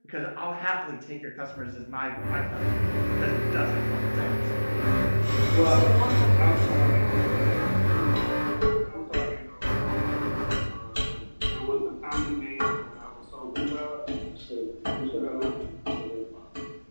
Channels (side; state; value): both; inverted; correlation -1.00